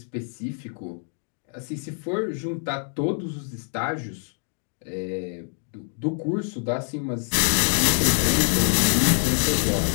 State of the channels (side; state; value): right; silent; 57 dB below the other